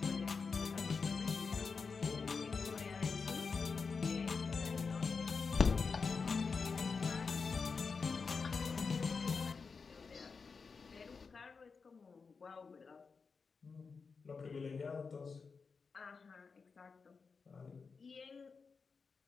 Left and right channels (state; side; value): quieter; right; 5.0 dB